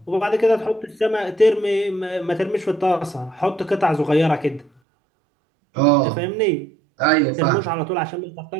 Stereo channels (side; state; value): left; drops out; at 4.7 s